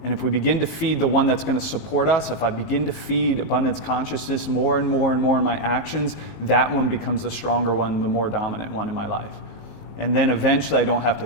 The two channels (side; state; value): right; late; 19 ms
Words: And if we begin to feed the one that's going to support us, if I begin to feed abundance consciousness more and more and more in my actions, that one becomes the stronger one, the more dominant one in my life. And then eventually I don't have to